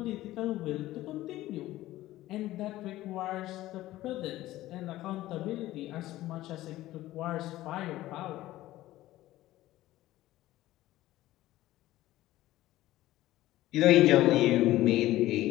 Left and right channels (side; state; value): right; quieter; 15.8 dB